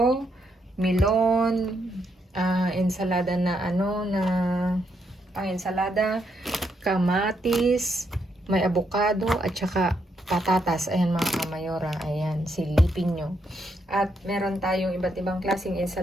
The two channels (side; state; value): both; normal; correlation 0.78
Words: Melon, ensalada na pang-ensalada, kamatis, may avocado, at saka patatas. Ayan mga kamayora, ayan, silipin nyo. At meron tayong iba't ibang klaseng